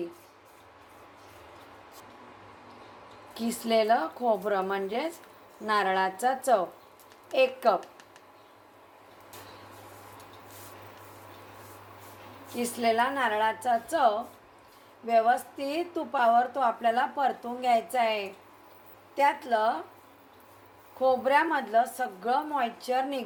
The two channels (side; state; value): both; identical; correlation 1.00